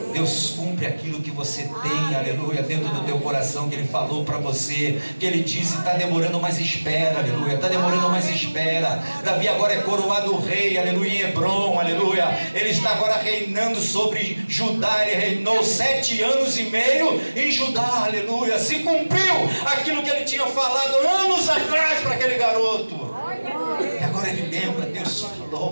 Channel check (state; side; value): inverted; both; correlation -1.00